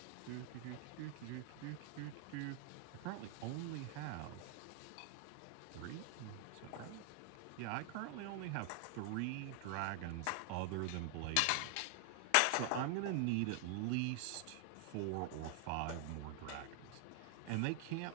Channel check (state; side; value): different; both; correlation 0.00